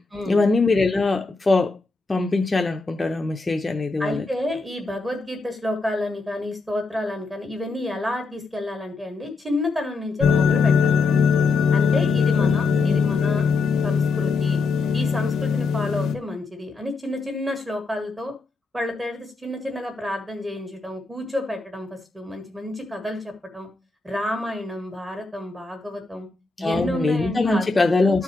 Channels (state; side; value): quieter; right; 3.9 dB